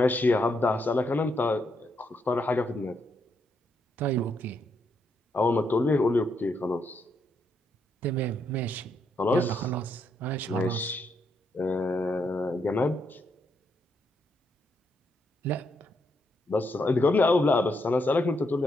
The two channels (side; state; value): both; normal; correlation 0.78